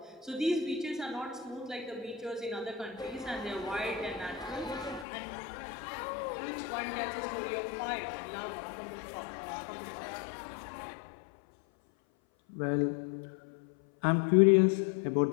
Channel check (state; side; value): drops out; right; at 5.1 s